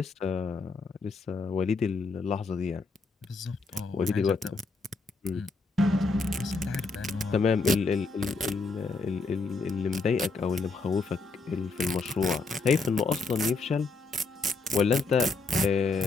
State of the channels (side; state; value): right; quieter; 3.9 dB